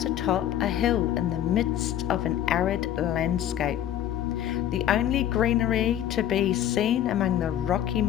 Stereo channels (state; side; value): quieter; right; 11.3 dB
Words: atop a hill in the midst of an arid landscape. The only greenery to be seen among the rocky